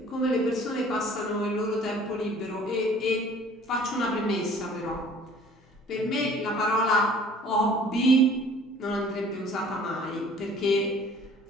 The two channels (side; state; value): both; normal; correlation 0.51